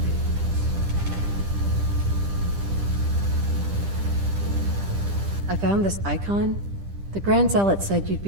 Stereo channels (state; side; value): late; left; 10 ms